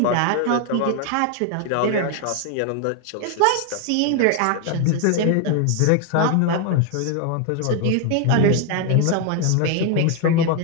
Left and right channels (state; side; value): different; both; correlation 0.01